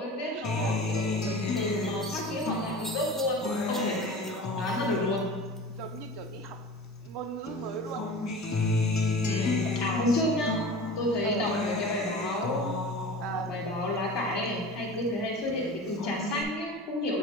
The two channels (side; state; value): both; normal; correlation 0.36